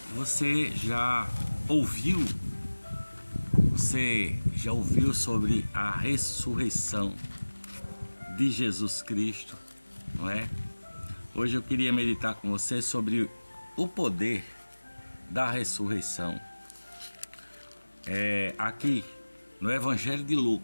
Você já ouviu sobre a ressurreição de Jesus Cristo, não é? Hoje eu queria meditar com você sobre o poder da ressurreição. Aqui no Evangelho de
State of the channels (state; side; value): inverted; both; correlation -1.00